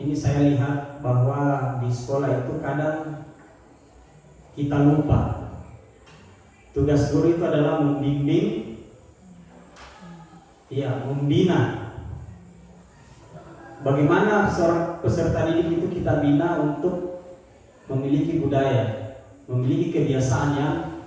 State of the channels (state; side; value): identical; both; correlation 1.00